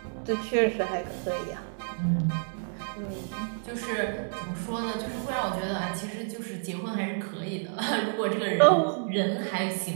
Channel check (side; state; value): left; silent; 58 dB below the other